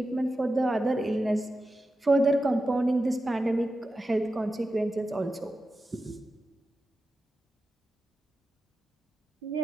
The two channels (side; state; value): both; normal; correlation 0.91